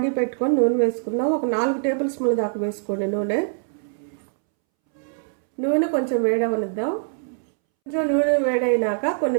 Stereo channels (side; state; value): left; silent; 63 dB below the other